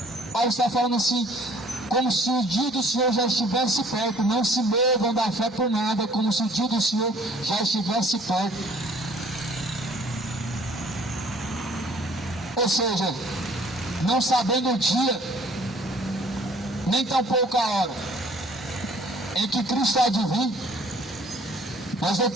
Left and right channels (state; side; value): normal; both; correlation 0.56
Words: Paulo está falando assim, como se o dia do Senhor já estivesse perto. Não se movam da fé por nada, como se o dia do Senhor já estivesse perto. Ou seja, não sabendo o dia, nem tampouco a hora em que Cristo há de vir, nós não